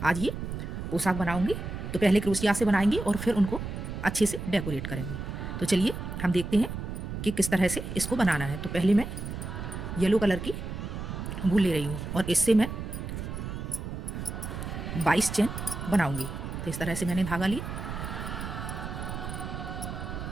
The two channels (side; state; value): right; noise; rumble, 6 dB below the sound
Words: आज ये पोशाक बनाऊंगी। तो पहले क्रोशिया से बनाएंगे और फिर उनको अच्छे से डेकोरेट करेंगे। तो चलिए हम देखते हैं कि किस तरह से इसको बनाना है। तो पहले मैं येलो कलर की वूल ले रही हूँ और इससे मैं 22 चेन बनाऊंगी। तो इस तरह से मैंने धागा लिया